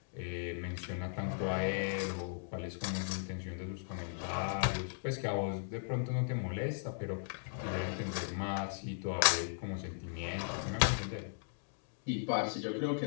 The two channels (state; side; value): silent; right; digital silence